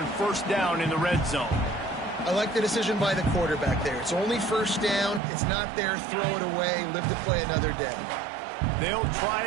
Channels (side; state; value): left; drops out; at 5.2 s